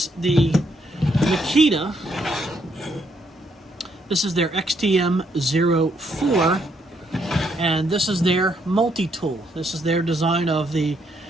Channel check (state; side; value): normal; both; correlation 0.74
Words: the Makita. This is their XTM04, and this is their multi-tool. This is their design of the